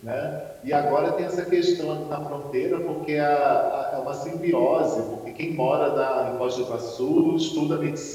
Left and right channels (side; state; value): both; identical; correlation 1.00